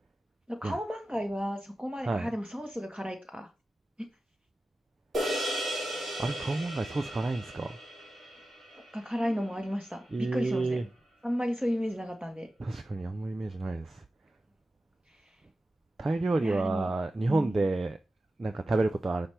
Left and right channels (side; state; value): both; normal; correlation 0.94